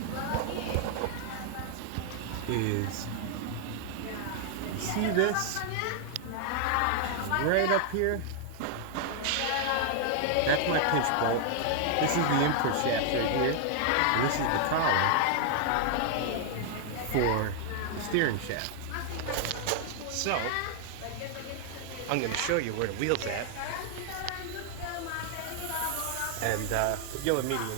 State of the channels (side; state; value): both; different; correlation 0.00